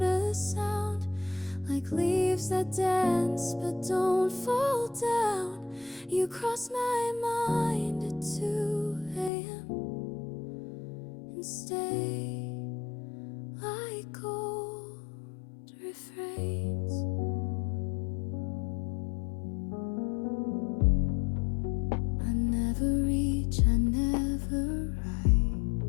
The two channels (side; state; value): right; drops out; at 9.3 s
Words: a sound, like leaves that dance but don't fall down. You cross my mind at 2 a.m. and stay like old refrains. I never reach, I never write.